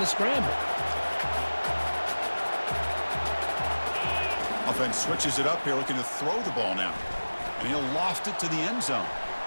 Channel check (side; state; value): both; inverted; correlation -1.00